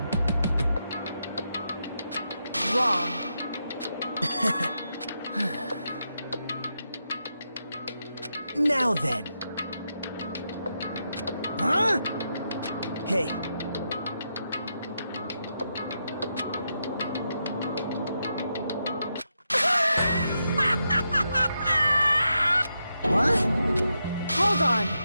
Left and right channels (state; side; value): inverted; both; correlation -0.84